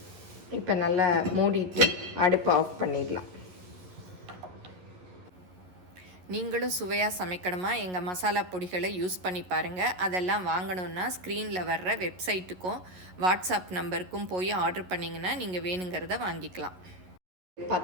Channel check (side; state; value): left; late; 11 ms